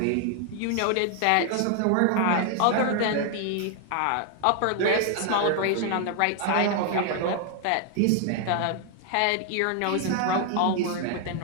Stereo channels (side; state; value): both; different; correlation 0.00